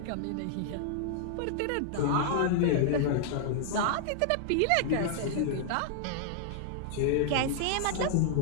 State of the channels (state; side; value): different; both; correlation -0.01